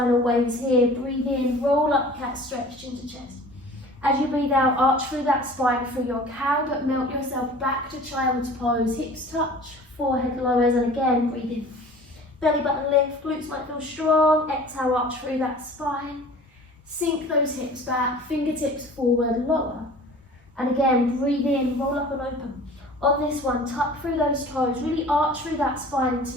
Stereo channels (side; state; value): both; normal; correlation 0.44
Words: waves here, breathe in, roll up, cat stretch, chin to chest. As you breathe out, arch through that spine, through your cow, but melt yourself back to child's pose. Hips touch, forehead lowers, and again, breathe in. Belly button lift, glutes might feel strong. Exhale, arch through that spine. Sink those hips back, fingertips forward, lower. And again, breathe in, roll up and open. On this one, tuck through those toes, really arch through that spine into